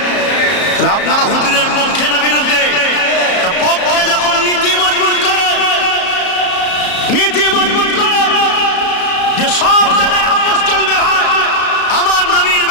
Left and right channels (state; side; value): late; right; 34 ms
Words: তাহলে আপনারা হুজুরের পক্ষে না বিরুদ্ধে? পক্ষে যখন নীতি মজবুত করে, নীতি মজবুত করে যে সব জায়গায় আপোষ চলবে ভাই, আমার নবীর